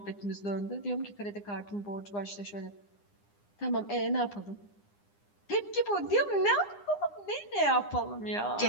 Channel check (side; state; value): right; late; 9.8 ms